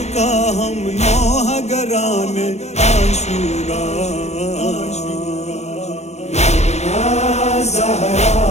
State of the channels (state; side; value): late; right; 0.32 ms